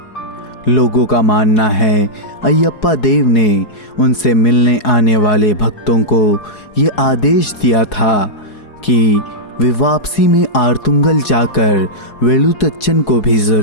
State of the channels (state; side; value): late; right; 4.7 ms